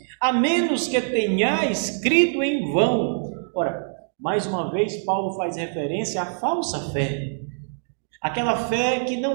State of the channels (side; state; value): left; silent; digital silence